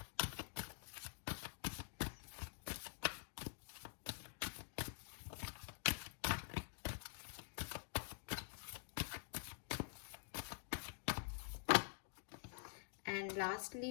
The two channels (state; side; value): silent; right; digital silence